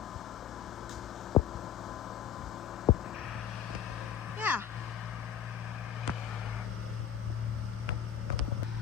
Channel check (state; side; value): quieter; right; 9.1 dB